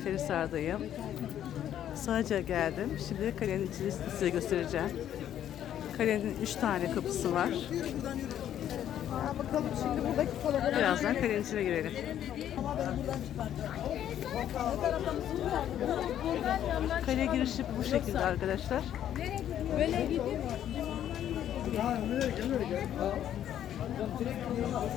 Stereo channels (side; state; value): right; quieter; 10.8 dB